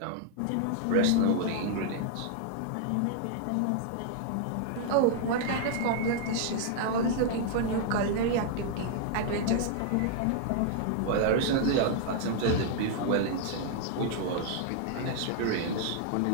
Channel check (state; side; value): different; both; correlation 0.00